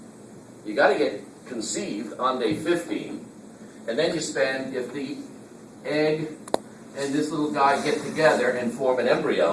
You got to get conceived on day 15, and then you spend, if the egg and this little guy get together and form an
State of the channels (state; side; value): identical; both; correlation 1.00